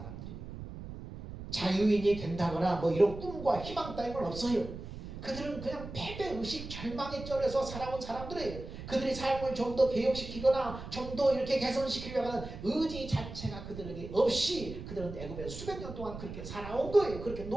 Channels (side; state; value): right; noise; rumble, 10 dB below the sound